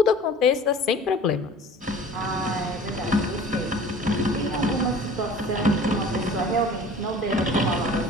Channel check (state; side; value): normal; both; correlation 0.45